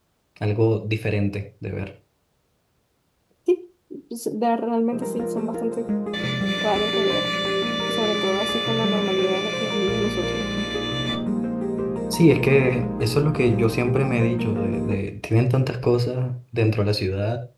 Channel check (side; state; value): both; identical; correlation 1.00